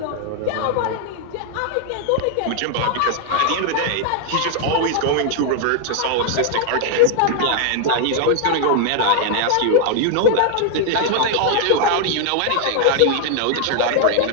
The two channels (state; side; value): different; both; correlation 0.00